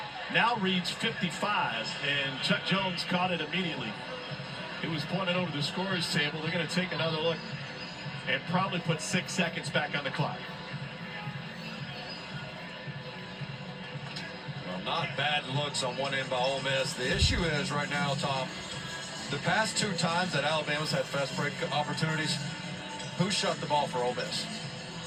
now reads 55, and Chuck Jones caught it immediately. It was pointed over the scorer's table. They're going to take another look and probably put 6 seconds back on the clock. Well, not bad looks on one end by Ole Miss. The issue is right now, Tom, the past 2 times that Alabama's had fast break opportunities, who shut the ball for Ole Miss?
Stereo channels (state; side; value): identical; both; correlation 1.00